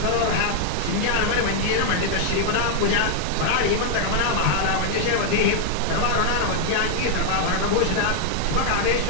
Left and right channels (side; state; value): both; different; correlation 0.00